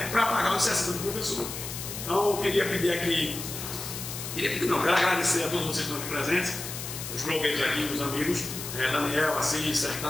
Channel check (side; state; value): left; noise; hiss, 7 dB below the sound